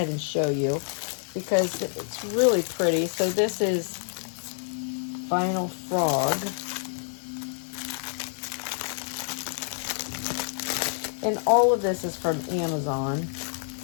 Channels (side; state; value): right; silent; digital silence